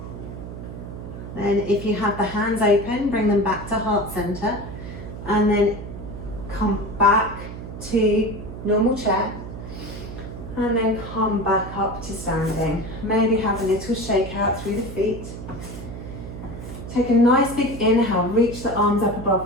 Then if you have the hands open, bring them back to heart center, and then come back to normal chair. And then come back up to standing. Maybe have a little shake out through the feet. Take a nice big inhale, reach the arms up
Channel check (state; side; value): noise; right; hum, 10 dB below the sound